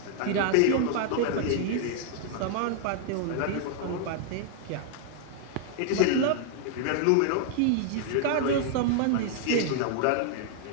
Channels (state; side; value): different; both; correlation 0.00